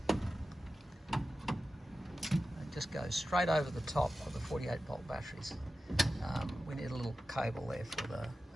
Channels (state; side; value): normal; both; correlation 0.93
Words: it just goes straight over the top of the 48 volt batteries. We need a little cable there for the